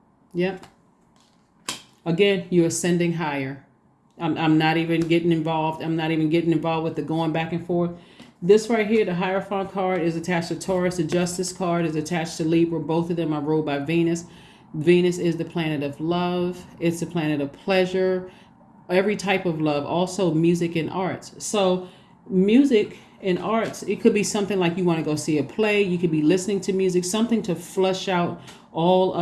Yep. Again, you're ascending higher. I'm not even getting involved. I'm not even getting involved with the going back and forth. This right here, the Hierophant card, is attached to Taurus. The Justice card is attached to Libra. Both of them are ruled by Venus. Venus is the planet of love. It's the planet of pleasure, every type of love, also music and arts. So music and arts, it could be something like you want to go see a play. You could be listening to music, something to flush out all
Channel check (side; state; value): both; identical; correlation 1.00